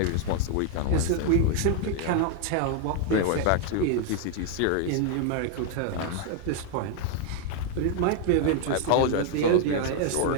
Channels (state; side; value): different; both; correlation 0.00